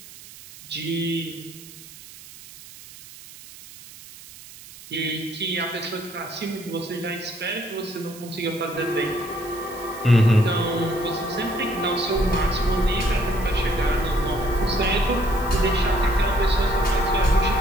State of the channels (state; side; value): noise; right; hiss, 18 dB below the sound